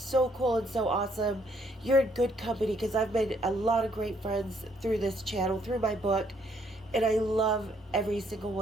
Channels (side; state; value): both; normal; correlation 0.68